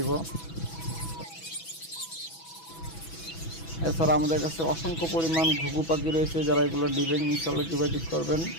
এছাড়া আমাদের কাছে অসংখ্য পরিমাণ ঘুঘু পাখি রয়েছে, যারা এগুলো দিবেন ইনশাল্লাহ যোগাযোগ করবেন।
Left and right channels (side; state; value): right; late; 6.1 ms